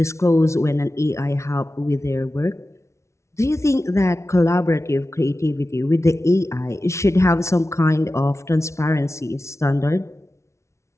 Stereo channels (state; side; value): late; right; 0.13 ms